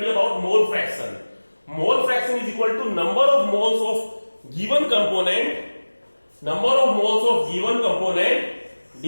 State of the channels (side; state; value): both; inverted; correlation -1.00